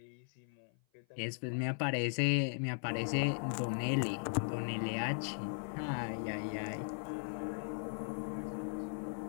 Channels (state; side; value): silent; right; 52 dB below the other